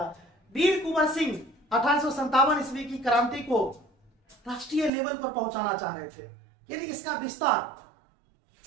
वीर कुंवर सिंह 1857 ईस्वी की क्रांति को राष्ट्रीय लेवल पर पहुंचाना चाह रहे थे, यानी इसका विस्तार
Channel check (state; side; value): drops out; left; at 4.9 s